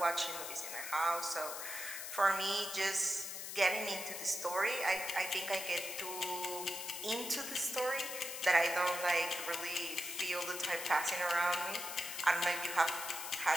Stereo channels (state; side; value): noise; left; hiss, 7 dB below the sound